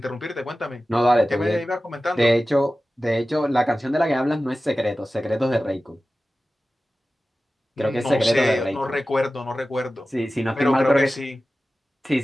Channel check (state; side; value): normal; both; correlation 0.95